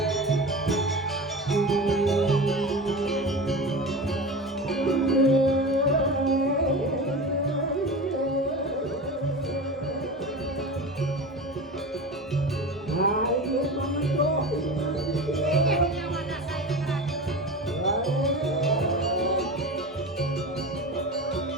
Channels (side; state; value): both; normal; correlation 0.29